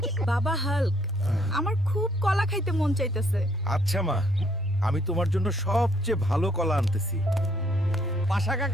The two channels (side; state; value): both; normal; correlation 0.67